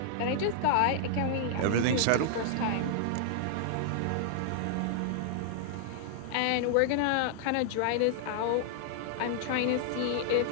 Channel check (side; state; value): both; different; correlation -0.01